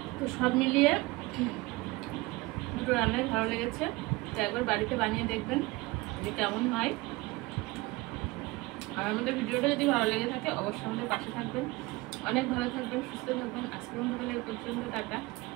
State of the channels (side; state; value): left; quieter; 21.9 dB